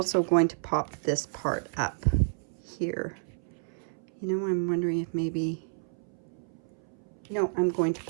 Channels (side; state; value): left; silent; 58 dB below the other